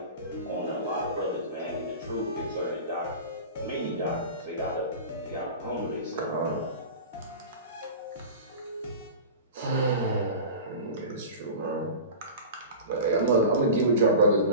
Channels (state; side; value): inverted; both; correlation -0.32